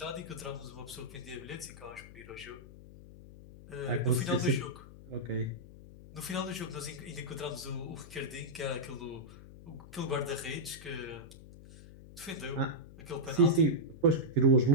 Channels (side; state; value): left; noise; hum, 17 dB below the sound